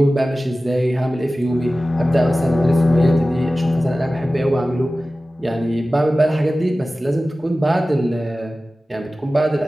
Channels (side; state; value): both; normal; correlation 0.96